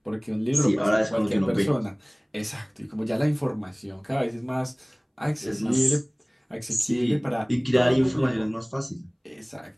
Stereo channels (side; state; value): both; identical; correlation 1.00